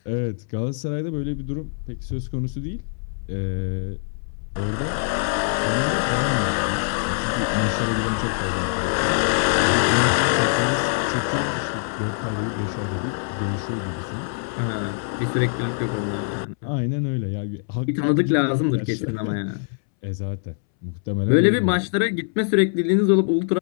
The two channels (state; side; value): silent; right; 63 dB below the other